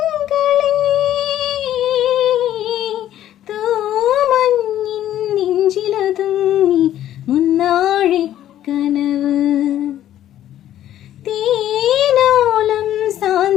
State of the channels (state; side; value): quieter; right; 12.1 dB